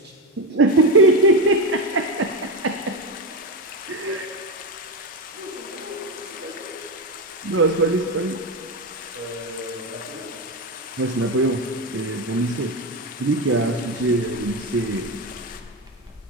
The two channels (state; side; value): normal; both; correlation 0.14